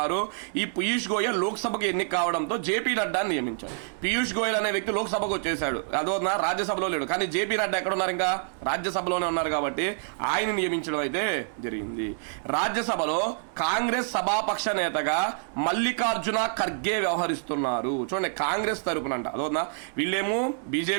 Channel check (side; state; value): left; silent; 60 dB below the other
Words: ఈ పీయూష్ గోయల్ లోక్సభకు ఎన్నిక కావడంతో జేపీ నడ్డా నియమించారు. పీయూష్ గోయల్ అనే వ్యక్తి లోక్సభకు వచ్చేసాడు, అదో రాజ్యసభలో లేడు. కానీ జేపీ నడ్డా ఎక్కడ ఉన్నారు? ఇంకా రాజ్యసభలోనే ఉన్నారు కాబట్టి ఆయన నియమించడం అయితే జరిగింది. రాజ్యసభలో కాంగ్రెస్ సభాపక్ష నేతగా మల్లికార్జున ఖర్గే వ్యవహరిస్తున్నారు. చూడండి, కాంగ్రెస్ తరపున అంట. అదోనా వీళ్ళేమో